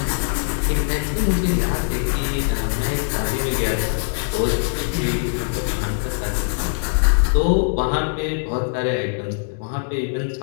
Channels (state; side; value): silent; right; digital silence